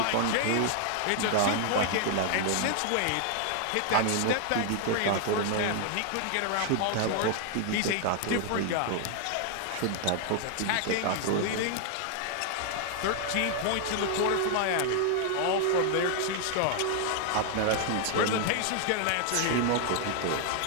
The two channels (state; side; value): different; both; correlation 0.00